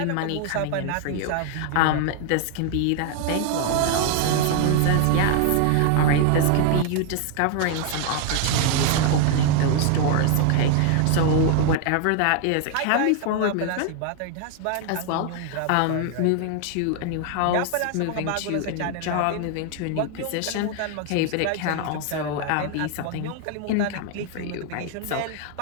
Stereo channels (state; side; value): different; both; correlation 0.00